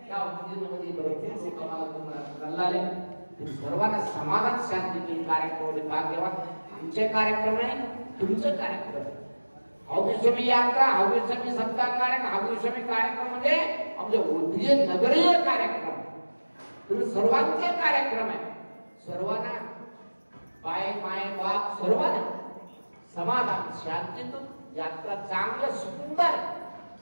या उद्योगामध्ये भरपूर लोक आम्हाला तुम्हाला कळले. सर्वांना समाधान शांती कार्यक्रम भाग्यवान. आमचे कार्यक्रम आहे, तुमचं कार्यक्रम. हौगीस्वामी यात्रा, हौगीस्वामी सप्ताह कार्यक्रम, हौगीस्वामी कार्यक्रम म्हणजे आमचे उद्योग नगरीय कार्यक्रम. तुम्ही सर्वांचे कार्यक्रम आहे. सर्वांना बाय माय बाप सर्वांना समाधान शांतीतून यात्रा चांगलं सुंदर.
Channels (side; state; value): both; inverted; correlation -1.00